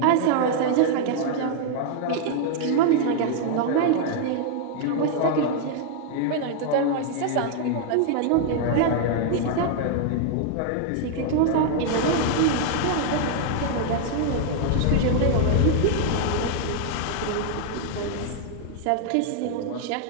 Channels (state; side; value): different; both; correlation 0.00